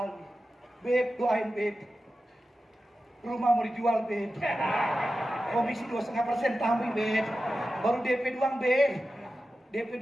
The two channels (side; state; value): both; normal; correlation 0.93